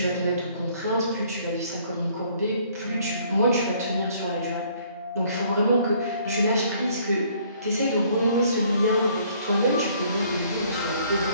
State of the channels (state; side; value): inverted; both; correlation -0.61